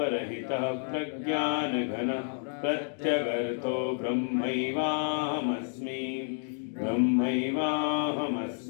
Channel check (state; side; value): silent; right; digital silence